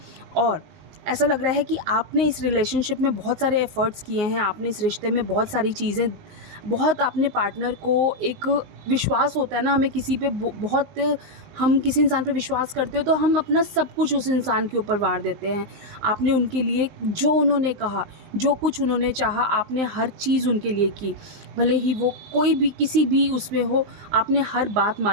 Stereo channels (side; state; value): left; late; 19 ms